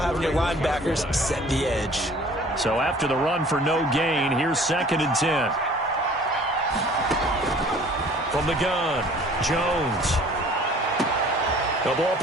your linebackers set the edge. So after the run for no gain, here's 2nd and 10. From the gun, Jones. The ball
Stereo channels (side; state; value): both; normal; correlation 0.51